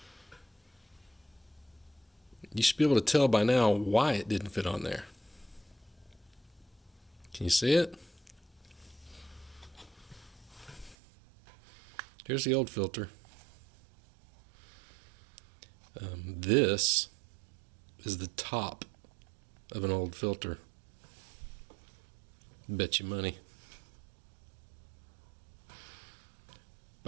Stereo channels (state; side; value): drops out; left; at 11.0 s